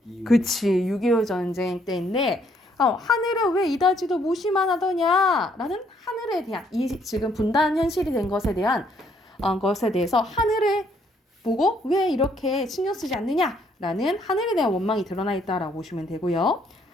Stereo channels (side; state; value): both; normal; correlation 0.68